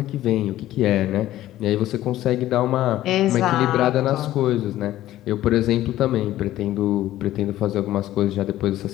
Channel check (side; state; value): right; quieter; 14.2 dB